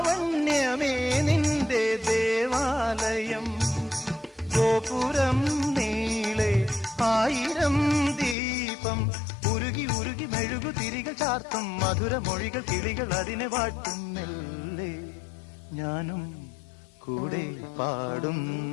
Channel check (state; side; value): drops out; right; at 8.3 s